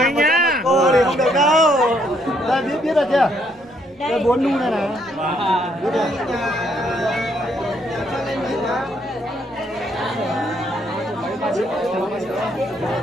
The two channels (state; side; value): normal; both; correlation 0.71